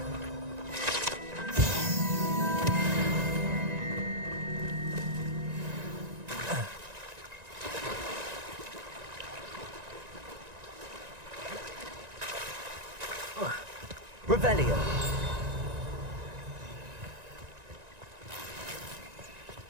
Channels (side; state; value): left; late; 1.9 ms